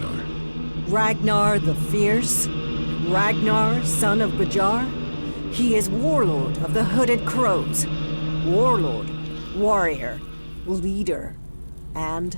Ragnar the Fierce? Ragnar, son of Bajar? He is warlord of the Hooded Crows. Warlord, warrior, leader, and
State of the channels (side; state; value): both; inverted; correlation -1.00